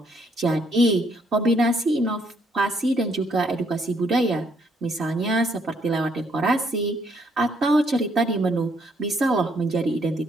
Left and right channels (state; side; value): normal; both; correlation 0.70